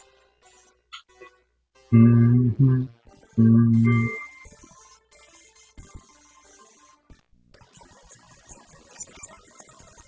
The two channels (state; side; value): identical; both; correlation 1.00